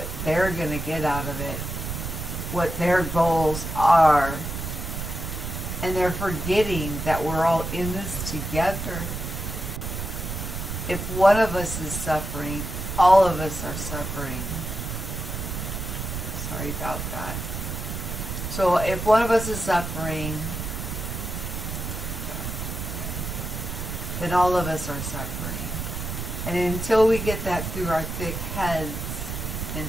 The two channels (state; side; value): noise; right; rumble, 5 dB below the sound